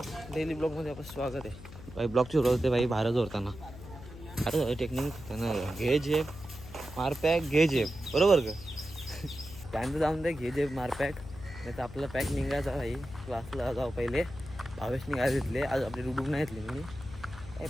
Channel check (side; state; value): left; noise; hum, 15 dB below the sound